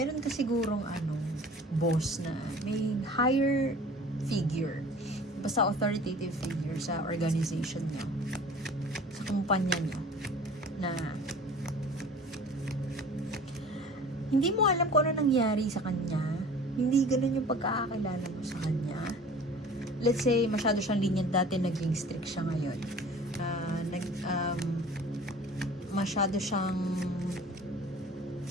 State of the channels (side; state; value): both; normal; correlation 0.45